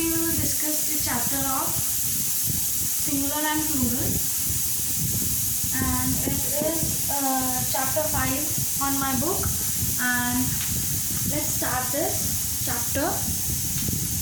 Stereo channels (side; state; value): both; identical; correlation 1.00